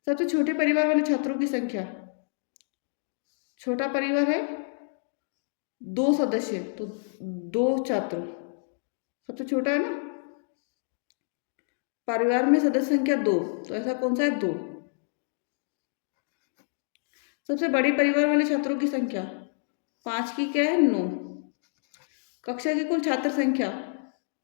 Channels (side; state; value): right; silent; digital silence